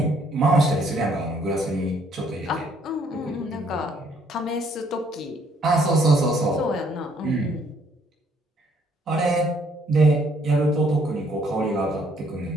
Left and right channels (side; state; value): both; normal; correlation 0.66